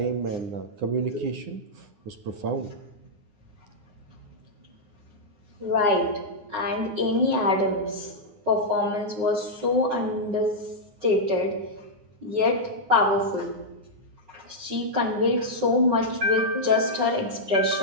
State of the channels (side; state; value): left; late; 9.7 ms